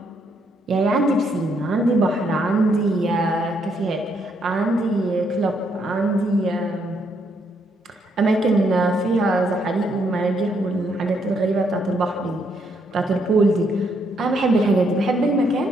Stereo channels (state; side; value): normal; both; correlation 0.74